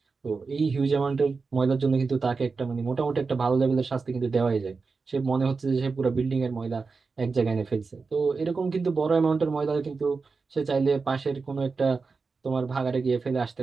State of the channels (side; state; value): left; quieter; 4.5 dB